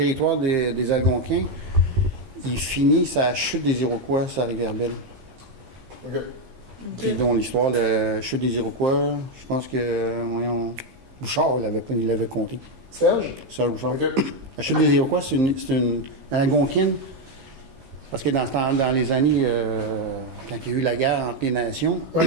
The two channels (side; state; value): left; late; 15 ms